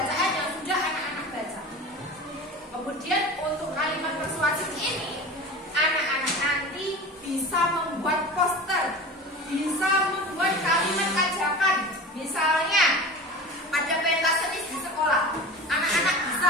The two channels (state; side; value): normal; both; correlation 0.33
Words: yang sudah anak-anak baca. Kemudian untuk kalimat persuasif ini, anak-anak nanti bisa membuat poster, bisa membuat kalimat ajakan. Misalnya ada pentas seni di sekolah, anak-anak bisa